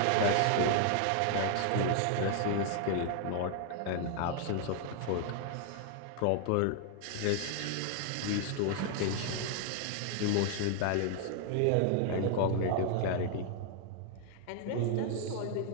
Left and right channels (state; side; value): different; both; correlation 0.00